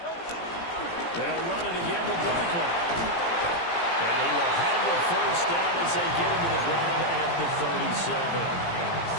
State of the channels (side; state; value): right; late; 17 ms